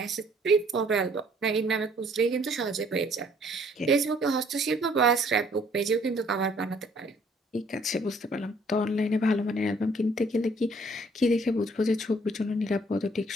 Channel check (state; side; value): normal; both; correlation 0.61